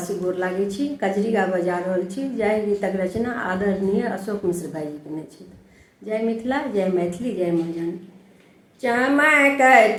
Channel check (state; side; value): identical; both; correlation 1.00